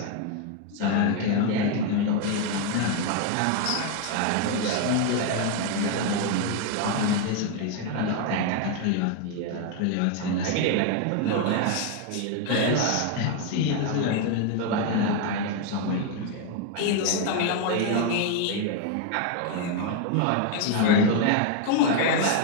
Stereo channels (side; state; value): both; different; correlation 0.01